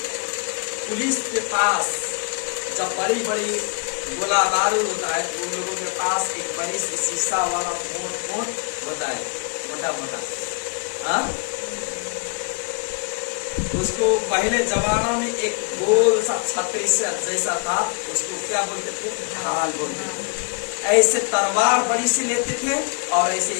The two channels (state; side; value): quieter; right; 36.2 dB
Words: पुलिस के पास जब बड़ी बड़ी गोला बारूद होता है, उन लोगों के पास एक बड़ी सी शीशा वाला मोट होता है, मोटा मोटा, हाँ, उसको पहले जमाना में एक गोल सा छतरी से जैसा था, उसको क्या बोलते थे, ढाल बोलते थे। ऐसे तलवार बड़ी से लेते थे और ऐसे